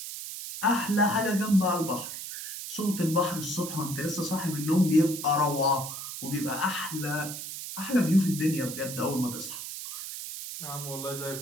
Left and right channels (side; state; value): right; noise; hiss, 8 dB below the sound